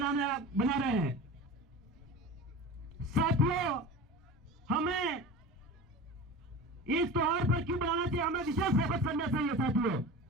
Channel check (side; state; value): both; normal; correlation 0.33